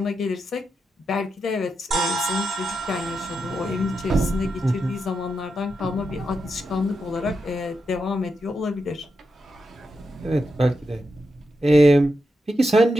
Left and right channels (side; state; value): both; normal; correlation 0.86